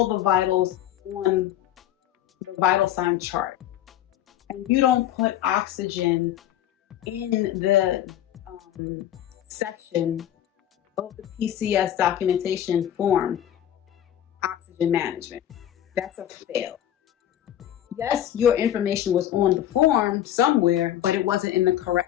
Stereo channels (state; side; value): quieter; right; 11.6 dB